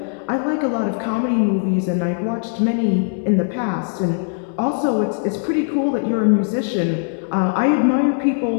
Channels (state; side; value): silent; right; digital silence